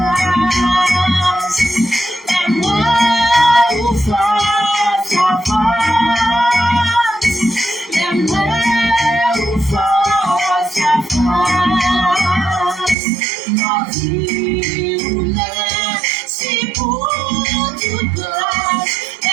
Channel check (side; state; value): left; drops out; at 13.0 s